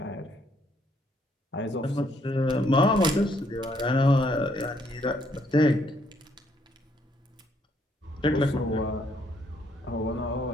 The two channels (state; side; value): normal; both; correlation 0.70